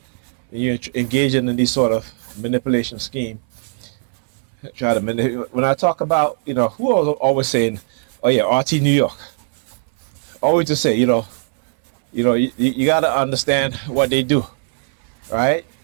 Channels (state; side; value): silent; left; 61 dB below the other